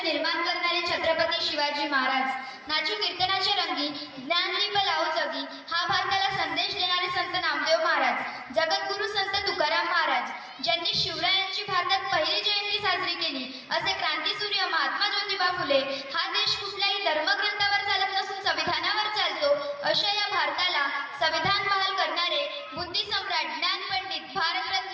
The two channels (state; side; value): identical; both; correlation 1.00